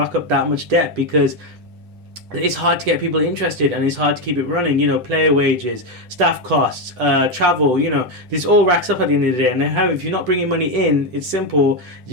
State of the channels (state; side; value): late; left; 7.8 ms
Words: up that much debt because it's hard to get people interested and it's hard to keep it running. Player wages, staff costs, travel, this all racks up at the end of the day. And if you're not bringing money in, it's simple,